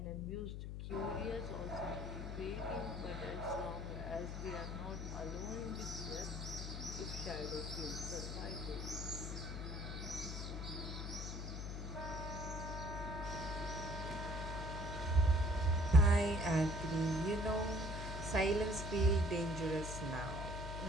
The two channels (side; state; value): left; noise; hum, 5 dB below the sound